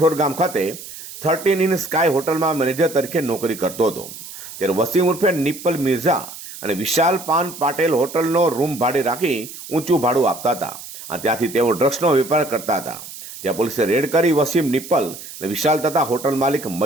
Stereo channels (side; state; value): right; noise; hiss, 13 dB below the sound